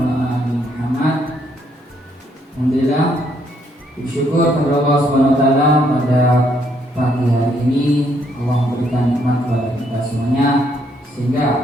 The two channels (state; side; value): normal; both; correlation 0.71